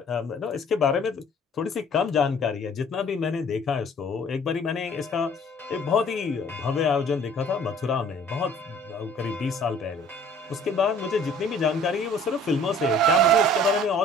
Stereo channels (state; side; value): normal; both; correlation 0.53